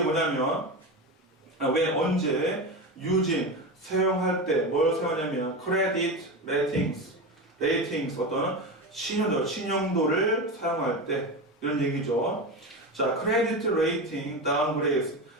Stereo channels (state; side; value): normal; both; correlation 0.21